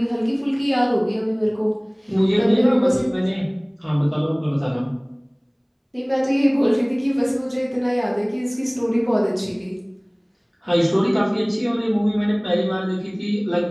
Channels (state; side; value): identical; both; correlation 1.00